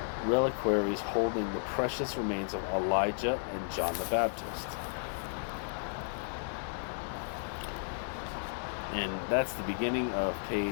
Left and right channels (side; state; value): right; silent; digital silence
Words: reliquaries holding the precious remains of Elijah and John the Baptist. And that's the beginning of